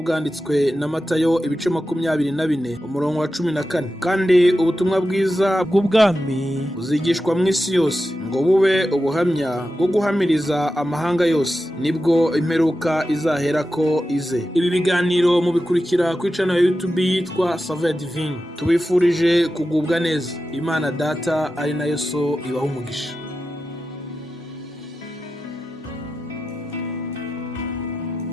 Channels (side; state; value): both; normal; correlation 0.91